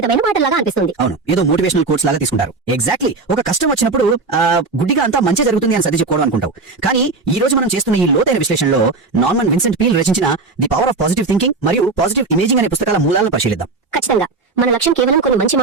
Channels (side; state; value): left; quieter; 3.9 dB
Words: మాటలాగా అనిపిస్తుంది. అవును, ఏదో మోటివేషనల్ కోట్స్ లాగా తీసుకుంటారు. ఎగ్జాక్ట్లీ, ఒక కష్టం వచ్చినప్పుడు గుడ్డిగా అంతా మంచి జరుగుతుంది అని సర్ది చెప్పుకోవడం అనుకుంటావు. కానీ ఈ రోజు మనం చేస్తున్న ఈ లోతైన విశ్లేషణలో నార్మన్ విన్సెంట్ పీల్ రచించిన the power of positive thinking మరియు పాజిటివ్ ఇమేజింగ్ అనే పుస్తకాల మూలాలను పరిశీలిద్దాం. ఖచ్చితంగా మన లక్ష్యం కేవలం కొన్ని మంచి